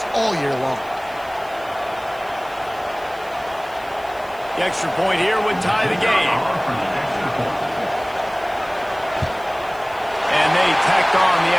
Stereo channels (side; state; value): right; noise; hiss, 24 dB below the sound